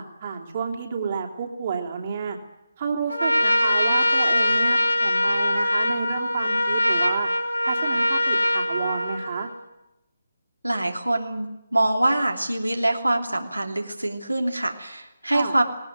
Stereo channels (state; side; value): inverted; both; correlation -0.93